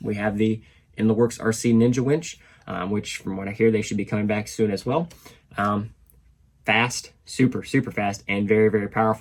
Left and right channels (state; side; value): identical; both; correlation 1.00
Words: We have the In the Works RC Ninja winch, which from what I hear, they should be coming back soon as well. Fast, super, super fast, and very, very